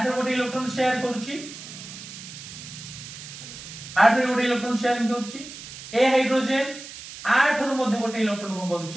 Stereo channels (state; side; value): noise; right; hiss, 13 dB below the sound